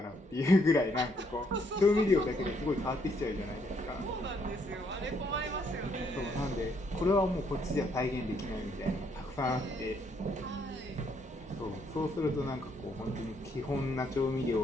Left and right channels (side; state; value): both; normal; correlation 0.71